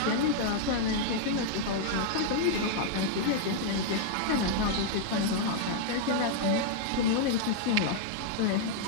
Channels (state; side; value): different; both; correlation -0.01